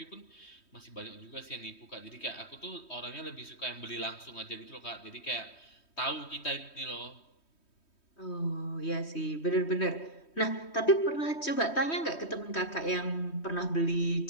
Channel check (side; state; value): right; late; 3.2 ms